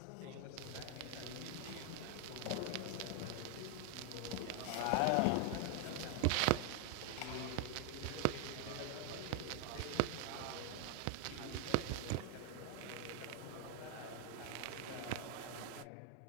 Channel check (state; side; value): different; both; correlation 0.00